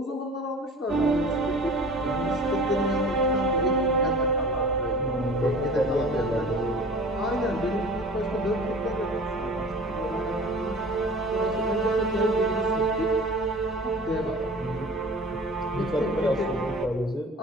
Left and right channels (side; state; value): both; normal; correlation 0.42